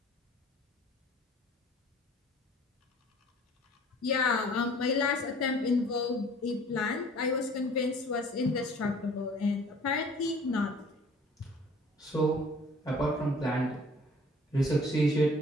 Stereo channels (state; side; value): normal; both; correlation 0.51